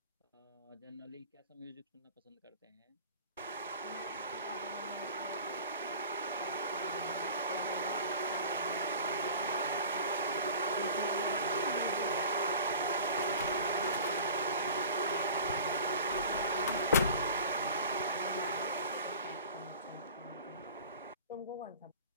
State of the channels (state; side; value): inverted; both; correlation -0.42